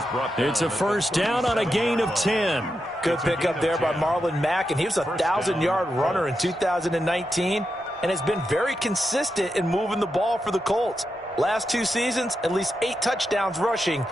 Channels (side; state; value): both; normal; correlation 0.87